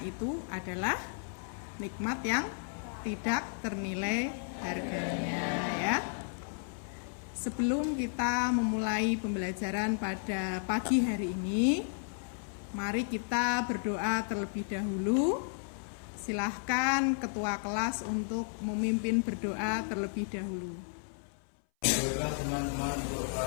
itu adalah nikmat yang tidak ternilai harganya ya. Sebelum kita memulai pembelajaran pada pagi hari ini, mari kita berdoa terlebih dahulu. Silahkan ketua kelas untuk memimpin berdoa terlebih dahulu. Teman-teman untuk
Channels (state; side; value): silent; right; 56 dB below the other